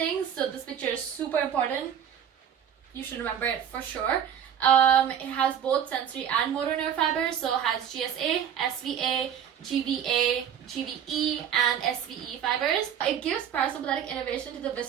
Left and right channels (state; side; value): quieter; left; 9.0 dB